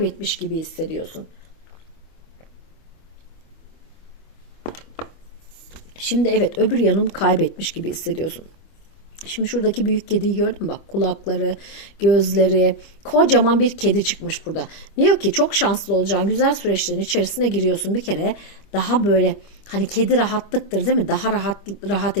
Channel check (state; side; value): late; right; 25 ms